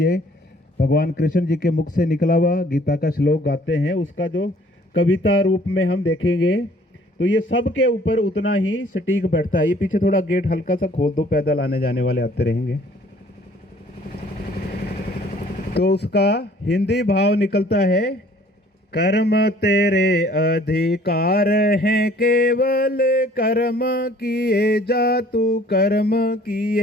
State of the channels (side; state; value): both; normal; correlation 0.56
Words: भगवान कृष्ण जी के मुख से निकला हुआ गीता का श्लोक गाते हैं। उसका जो कविता रूप में हम देखेंगे तो ये सबके ऊपर उतना ही सटीक बैठता है। ये पीछे थोड़ा गेट हल्का सा खोल दो, पैदल आने जाने वाले आते रहेंगे। तो उसका हिंदी भाव निकलता है, कर्म तेरे अधिकार हैं केवल, कर्म किए जा तू कर्म